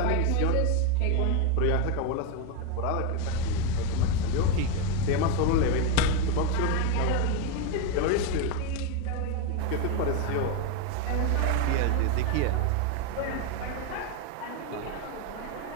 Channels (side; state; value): both; different; correlation 0.02